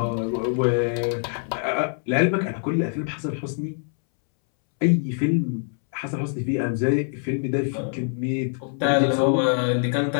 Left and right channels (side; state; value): right; silent; 63 dB below the other